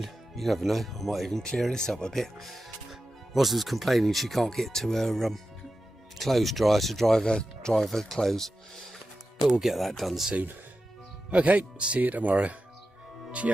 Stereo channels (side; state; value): both; normal; correlation 0.92